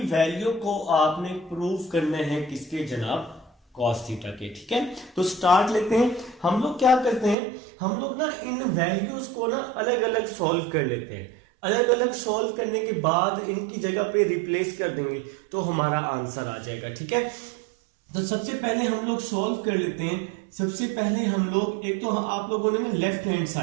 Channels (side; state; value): left; drops out; at 7.4 s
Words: वैल्यू को आपने प्रूव करना है किसके जनाब, कॉस थीटा के। ठीक है, तो स्टार्ट लेते हैं। हम लोग क्या करते हैं, हम लोग ना इन वैल्यूज को ना अलग अलग सॉल्व कर लेते हैं। अलग अलग सॉल्व करने के बाद इनकी जगह पे रिप्लेस कर देंगे तो हमारा आंसर आ जाएगा। ठीक है, तो सबसे पहले हम लोग सॉल्व कर लेते हैं। सबसे पहले हम लोग, एक तो आप लोगों ने ना लेफ्ट हैंड